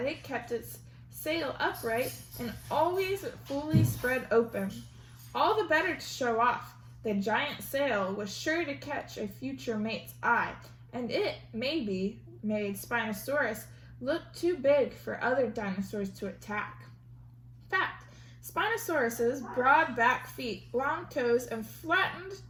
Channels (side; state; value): both; identical; correlation 1.00